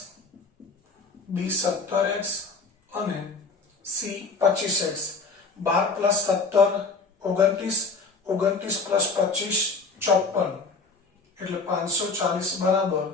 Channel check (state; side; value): quieter; right; 4.2 dB